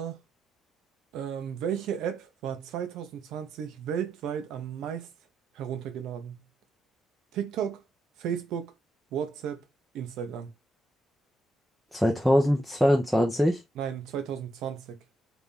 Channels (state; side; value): normal; both; correlation 0.83